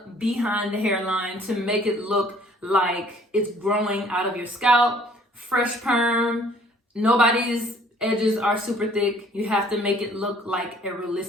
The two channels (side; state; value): both; normal; correlation 0.57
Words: behind the hairline to make it look like it's growing out of your scalp. Fresh perm. Nobody's edges are super thick. You have to make it look like a